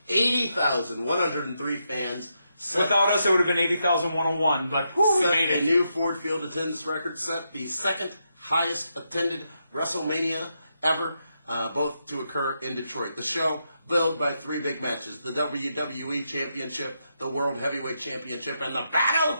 80,103 fans. Without us, it would have been 80,101, but we made it. A new Ford Field attendance record, set the second highest attended WrestleMania ever, both to occur in Detroit. The show billed by three big matches: the WWE Championship, the World Heavyweight Championship, and the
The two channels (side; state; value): both; inverted; correlation -0.83